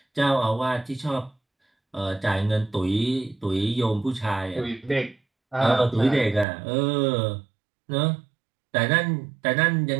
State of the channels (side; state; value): left; drops out; at 6.5 s